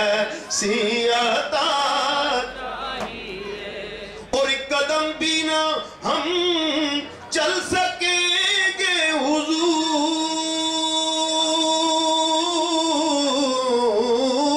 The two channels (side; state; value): both; identical; correlation 1.00